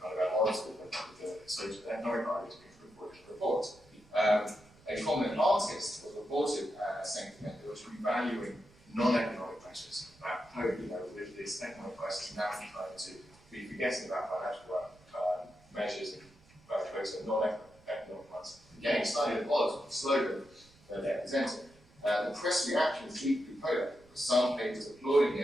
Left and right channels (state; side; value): noise; right; rumble, 27 dB below the sound